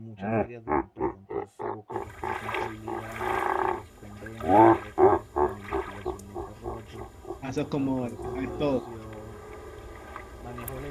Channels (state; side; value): identical; both; correlation 1.00